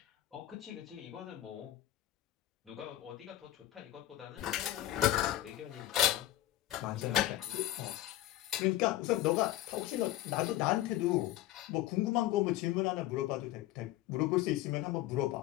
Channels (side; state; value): right; quieter; 14.6 dB